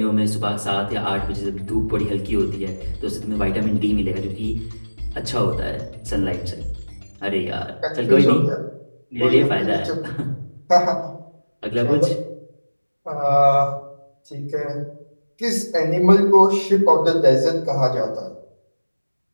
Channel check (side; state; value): both; inverted; correlation -1.00